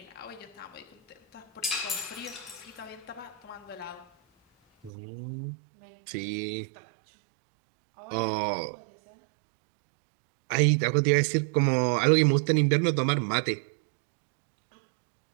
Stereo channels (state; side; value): drops out; left; at 4.9 s